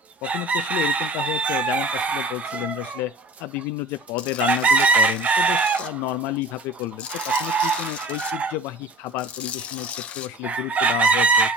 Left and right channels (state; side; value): normal; both; correlation 0.41